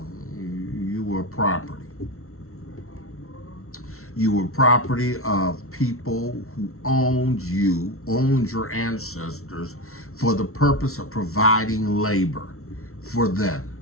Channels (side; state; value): right; late; 0.63 ms